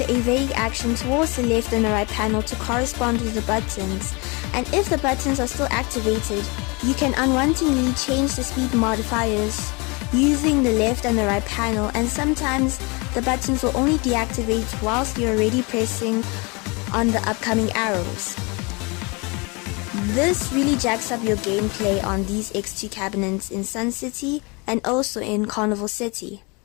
a vague action towards the left and the right panel to correspond with the buttons, and if the buttons are still activated, you can unwantingly change the speed modifiers using the left and the right panel, and sometimes the buttons will only deactivate whilst you're already pressing on the upcoming arrows. This really jacks up your gameplay on these X2 cabinets in Sun City and also in Carnival City.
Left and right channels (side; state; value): right; quieter; 29.0 dB